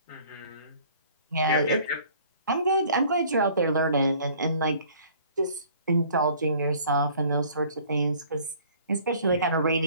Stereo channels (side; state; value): both; inverted; correlation -0.53